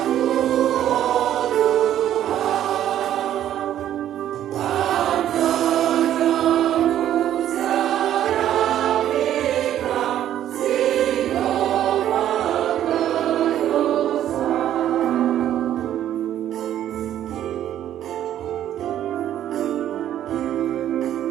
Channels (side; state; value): left; quieter; 11.5 dB